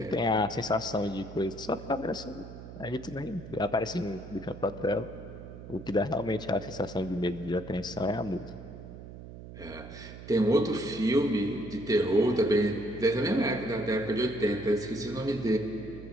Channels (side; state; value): right; noise; hum, 13 dB below the sound